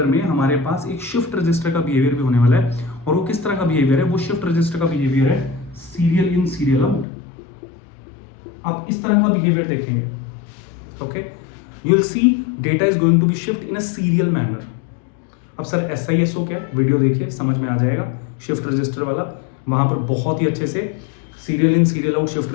में हमारे पास एक शिफ्ट रजिस्टर का बिहेवियर भी होने वाला है। और वो किस तरह का बिहेवियर है? वो शिफ्ट रजिस्टर का बिहेवियर है सीरियल इन सीरियल आउट। आप इस तरह का बिहेवियर देखेंगे। Okay, you will see data is going to be shift in a serial manner. अब सर SISO क्या? वीडियो देखिए, समझ में आ जाएगा। शिफ्ट रजिस्टर वाला, वहां पर बहुत ही अच्छे से serial in serial out shift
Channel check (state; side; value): drops out; right; at 7.1 s